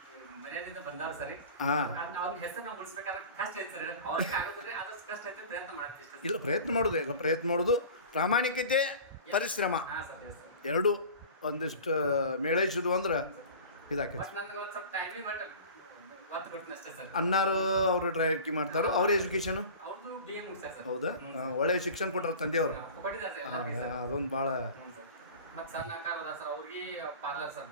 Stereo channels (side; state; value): both; inverted; correlation -0.39